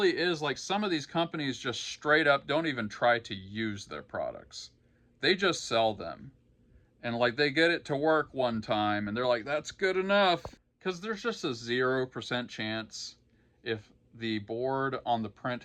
is like some of these companies just straight up don't even try to use their products. They just sell them. And like they get it to work one time and they're like, that's good enough. Because there's just a 0% chance if the board on the print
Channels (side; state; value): both; identical; correlation 1.00